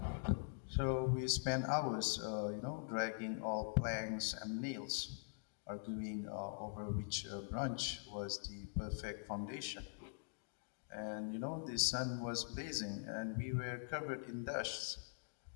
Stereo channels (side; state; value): right; silent; digital silence